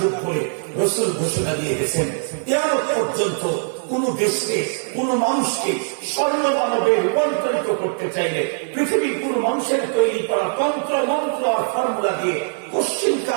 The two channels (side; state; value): left; silent; 61 dB below the other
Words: বলে রাসূল ঘোষণা দিয়ে গেছেন। কিয়ামত পর্যন্ত কোন দেশকে, কোন মানুষকে স্বর্ণ মানবে রূপান্তরিত করতে চাইলে পৃথিবীর কোন মানুষের তৈরি করা তন্ত্র মন্ত্র আর ফর্মুলা দিয়ে